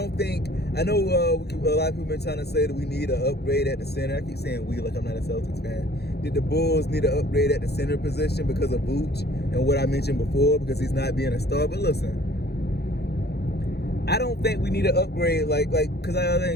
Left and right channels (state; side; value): late; right; 0.47 ms